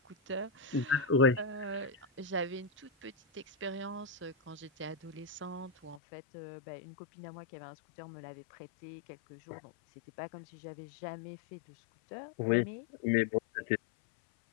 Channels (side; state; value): right; drops out; at 6.0 s